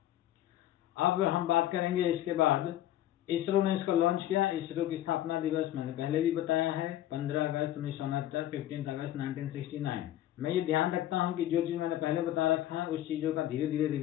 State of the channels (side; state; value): right; quieter; 13.1 dB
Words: अब हम बात करेंगे इसके बाद इसरो ने इसको लॉन्च किया। इसरो की स्थापना दिवस मैंने पहले भी बताया है, 15 अगस्त 1969, 15 अगस्त 1969। मैं ये ध्यान रखता हूँ कि जो चीज़ मैंने पहले बता रखा है उस चीज़ों का धीरे धीरे